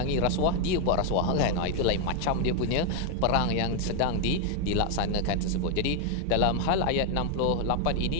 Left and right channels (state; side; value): different; both; correlation 0.00